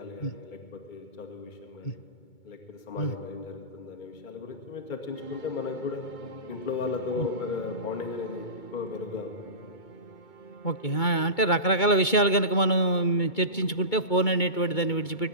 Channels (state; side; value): late; right; 2.2 ms